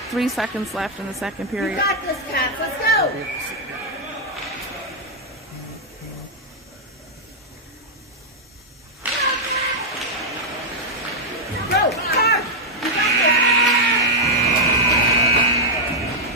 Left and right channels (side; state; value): both; normal; correlation -0.03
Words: 3 seconds left in the second You period. got this, Caps. Let's go. Go, Caps. You got that.